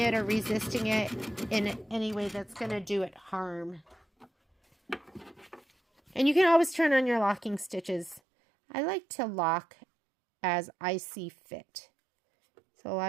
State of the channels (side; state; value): left; drops out; at 8.2 s